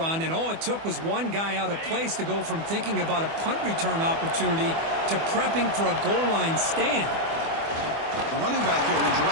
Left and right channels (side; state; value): left; late; 24 ms